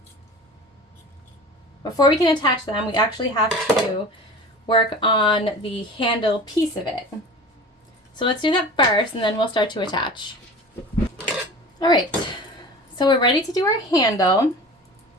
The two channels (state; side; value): normal; both; correlation 0.37